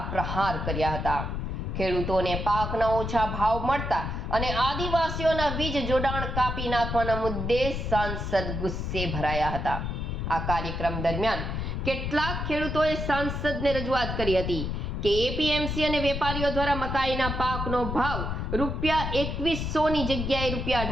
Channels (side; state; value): left; noise; rumble, 3 dB below the sound